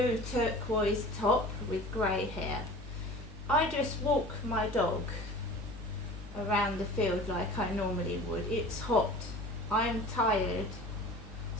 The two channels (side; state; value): both; normal; correlation 0.41